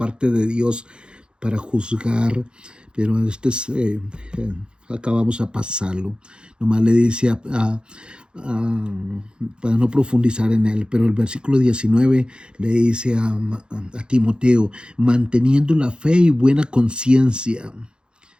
de Dios para juzgar, pero acabamos a pasarlo. Nomás le dice para no profundizar en él, pero el versículo 19 le dice a Timoteo, manteniendo la fe y buena conciencia,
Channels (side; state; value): left; late; 0.051 ms